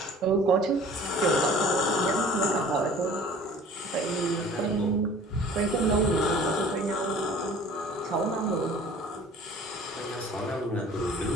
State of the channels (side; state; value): both; normal; correlation 0.48